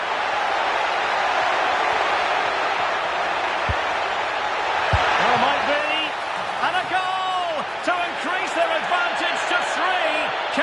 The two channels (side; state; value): both; identical; correlation 1.00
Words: To increase their advantage to 3.